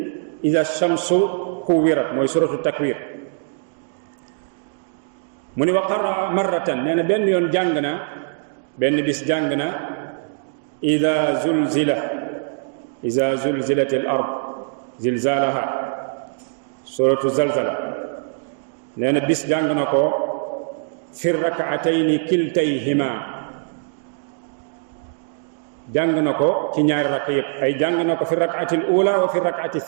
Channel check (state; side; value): silent; left; digital silence